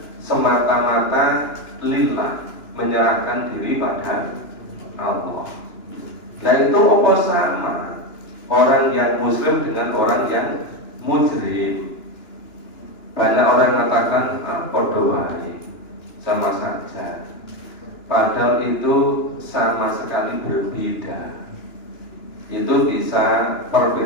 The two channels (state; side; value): late; right; 2.9 ms